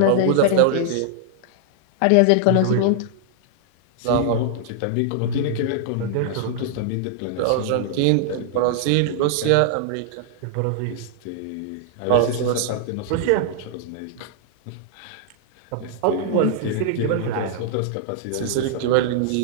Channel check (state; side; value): different; both; correlation -0.01